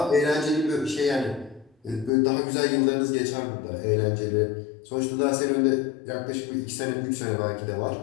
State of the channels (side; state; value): right; drops out; at 2.1 s